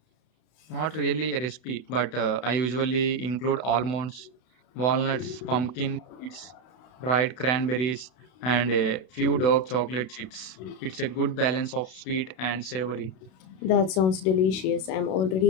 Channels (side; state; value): right; late; 32 ms